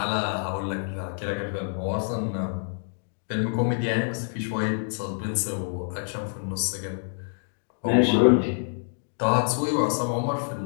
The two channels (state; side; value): silent; right; digital silence